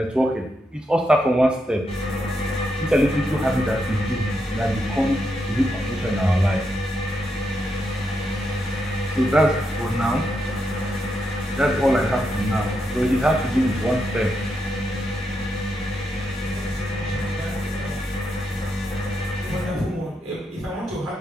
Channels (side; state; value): both; normal; correlation 0.82